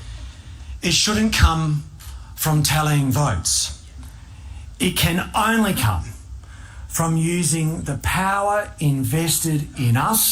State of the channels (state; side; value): identical; both; correlation 1.00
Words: it shouldn't come from tallying votes. It can only come from using the power invested in